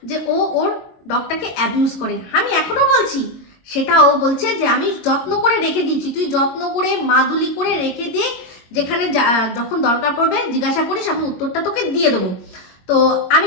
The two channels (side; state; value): right; late; 21 ms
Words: যে ও ওর ডগটাকে অ্যাবিউজ করে, আমি এখনো বলছি সেটা। ও বলছে যে আমি যত্ন করে রেখে দিয়েছি, তুই যত্ন করে মাদুলি করে রেখে দিয়ে যেখানে যখন দরকার পড়বে জিজ্ঞাসা করিস, আমি উত্তরটা তোকে দিয়ে দেবো। তো আমি